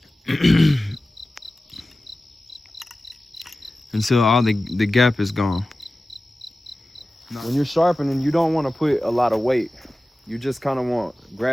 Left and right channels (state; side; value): normal; both; correlation 0.95